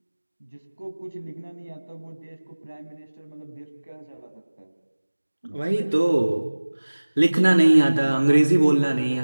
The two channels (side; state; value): both; inverted; correlation -1.00